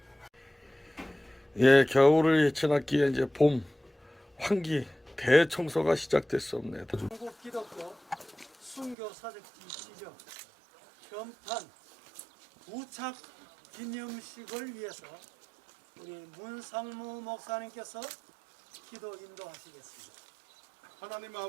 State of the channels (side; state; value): left; drops out; at 9.0 s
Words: 예, 겨울을 지났기에 이제 봄 환기 대청소가 시작됐습니다. 한국 기독교 순교 사적지 지정 현판 부착 기념식을 위해서 우리 문상무 목사님께서 기도 인도하시겠습니다. 하나님